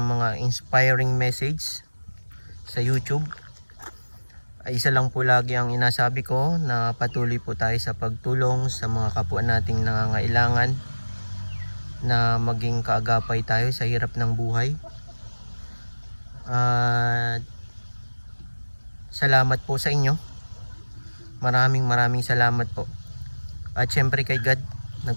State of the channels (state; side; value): inverted; both; correlation -1.00